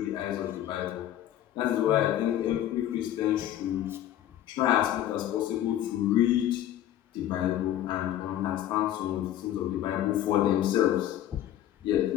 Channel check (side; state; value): right; quieter; 12.1 dB